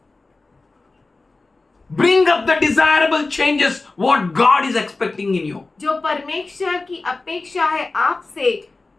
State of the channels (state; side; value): quieter; right; 3.5 dB